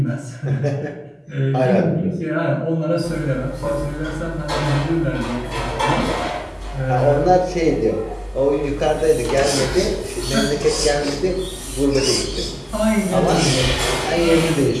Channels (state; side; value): identical; both; correlation 1.00